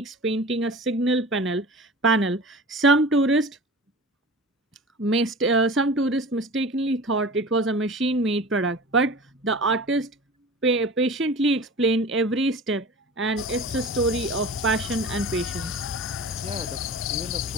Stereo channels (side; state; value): both; normal; correlation 0.36